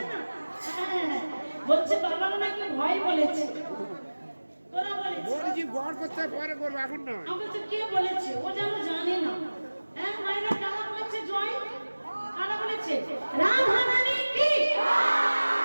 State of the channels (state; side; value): inverted; both; correlation -1.00